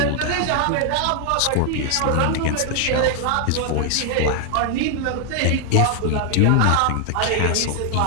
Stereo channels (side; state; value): both; different; correlation 0.00